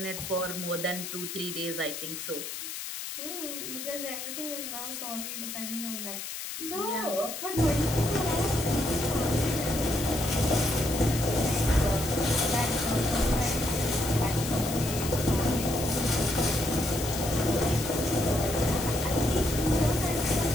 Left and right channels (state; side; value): noise; left; hiss, 7 dB below the sound